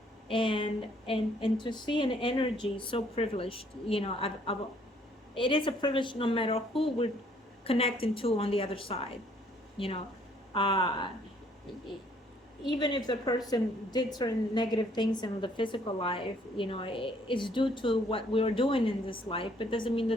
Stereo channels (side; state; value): both; normal; correlation 0.64